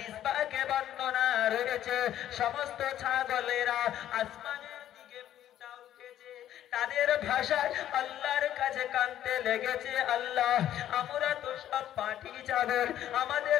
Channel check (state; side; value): quieter; right; 11.7 dB